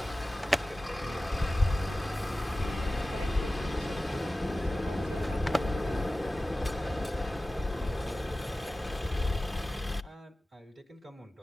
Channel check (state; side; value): normal; both; correlation 0.96